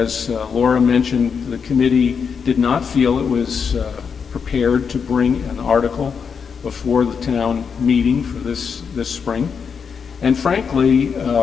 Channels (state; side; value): quieter; right; 6.3 dB